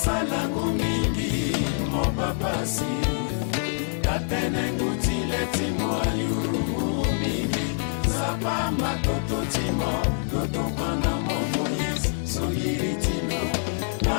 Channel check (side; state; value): right; silent; digital silence